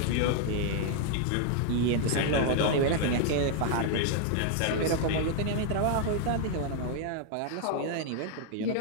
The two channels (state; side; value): different; both; correlation 0.00